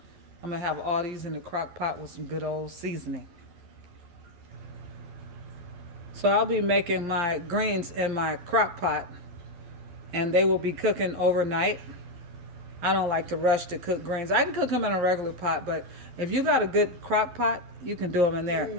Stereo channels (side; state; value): left; late; 12 ms